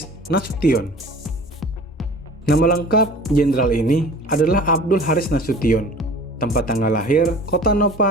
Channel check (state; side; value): normal; both; correlation 0.43